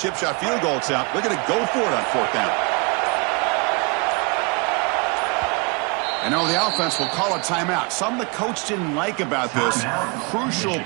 shot field goal attempt. They're going to go for it on 4th down. And now the offense will call a timeout. Something the coach didn't like about this. Crucial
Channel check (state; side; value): quieter; left; 31.5 dB